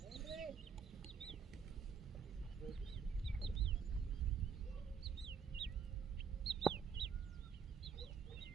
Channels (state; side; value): quieter; left; 6.5 dB